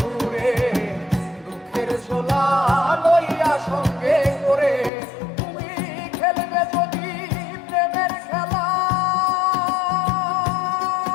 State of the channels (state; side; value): drops out; right; at 4.9 s